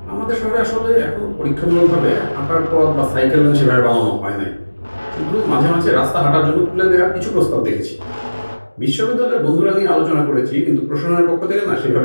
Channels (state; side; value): inverted; both; correlation -1.00